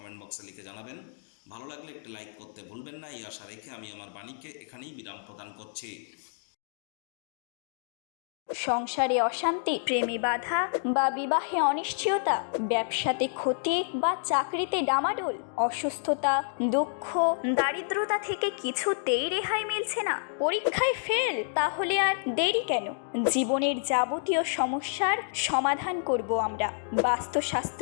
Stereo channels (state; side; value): silent; right; digital silence